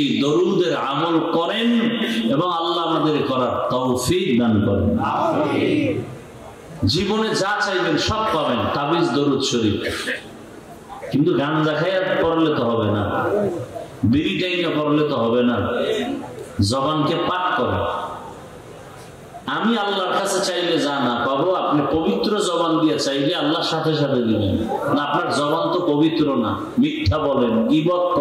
দরুদের আমল করেন এবং আল্লাহ আমাদের করার তৌফিক দান করেন। আমিন। জীবনে যা চাইবেন সব পাবেন, তাবিজ দরুদ শরীফ। কিন্তু গাঞ্জা খাইয়া পড়লে তো হবে না, বিড়ি টাইনা পড়লে তো হবে না। জবানকে পাক করেন। আমি আল্লাহর কাছে চাইলে যা না পাবো, আপনি পবিত্র জবান দিয়ে চাইলে আল্লাহ সাথে সাথে দিবেন। না, আপনার জবান তো পবিত্র না, মিথ্যা বলেন, গীবত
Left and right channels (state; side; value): identical; both; correlation 1.00